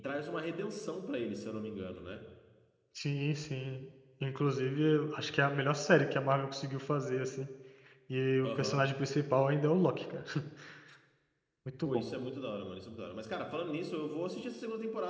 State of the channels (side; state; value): both; identical; correlation 1.00